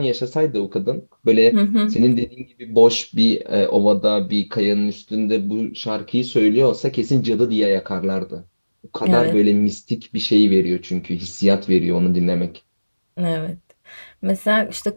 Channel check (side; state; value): both; inverted; correlation -1.00